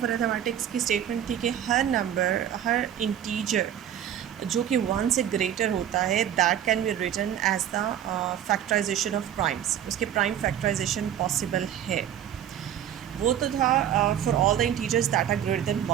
अरिथमेटिक्स की स्टेटमेंट थी कि हर नंबर, हर इंटीजर जो कि वन से ग्रेटर होता है, that can be written as the factorisation of primes. उसके प्राइम फैक्टराइजेशन पॉसिबल है। वो तो था for all the integers that are greater than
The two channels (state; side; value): quieter; left; 10.2 dB